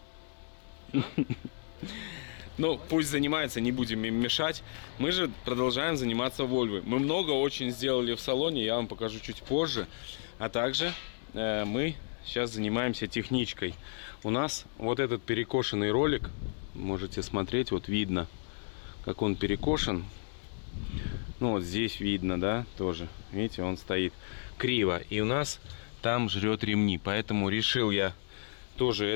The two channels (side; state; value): right; silent; digital silence